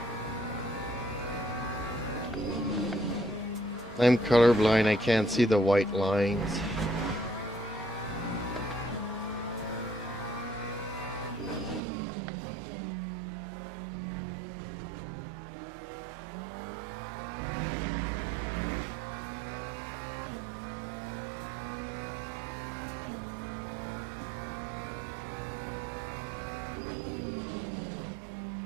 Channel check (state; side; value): drops out; left; at 11.8 s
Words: I'm colorblind, I can't see the white lines.